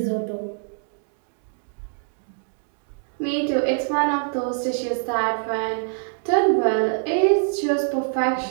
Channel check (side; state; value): left; silent; 62 dB below the other